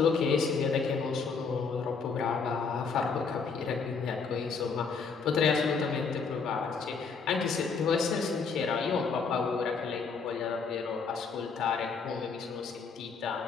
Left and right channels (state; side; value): quieter; right; 5.2 dB